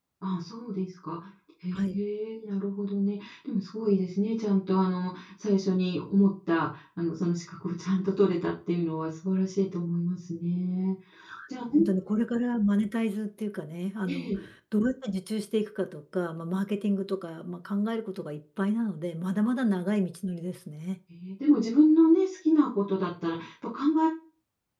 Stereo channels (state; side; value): identical; both; correlation 1.00